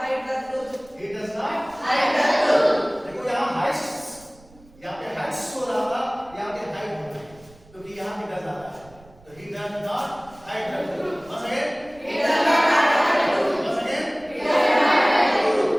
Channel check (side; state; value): right; noise; rumble, 25 dB below the sound